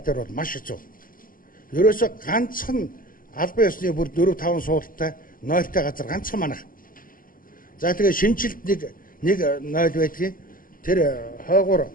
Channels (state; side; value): late; right; 0.41 ms